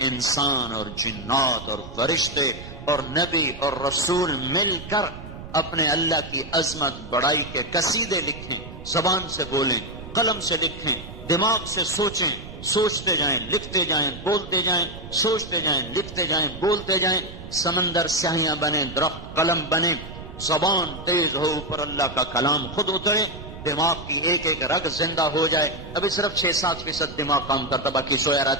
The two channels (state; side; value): noise; right; rumble, 13 dB below the sound